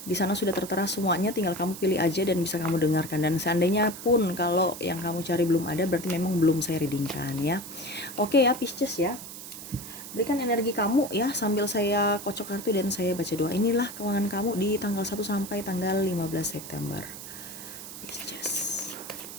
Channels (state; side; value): noise; right; hiss, 12 dB below the sound